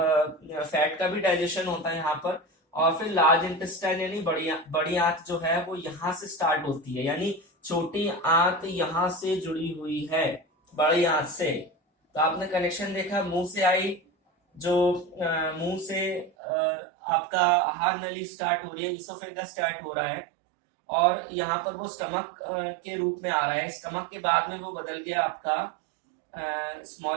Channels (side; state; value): left; drops out; at 16.3 s